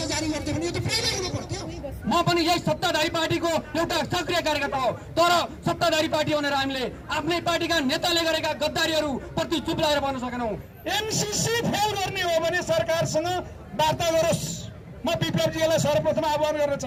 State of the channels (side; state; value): both; identical; correlation 1.00